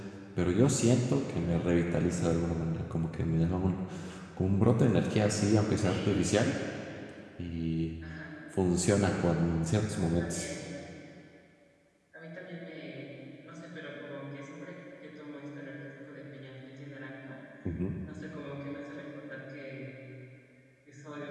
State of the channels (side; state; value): both; identical; correlation 1.00